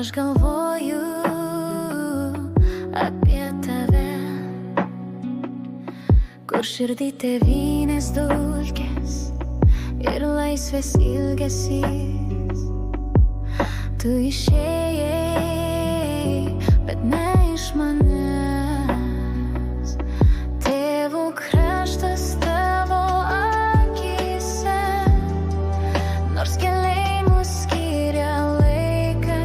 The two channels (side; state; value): both; identical; correlation 1.00